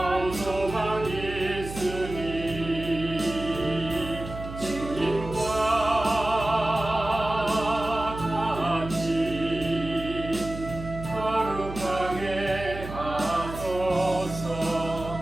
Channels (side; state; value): right; noise; hum, 10 dB below the sound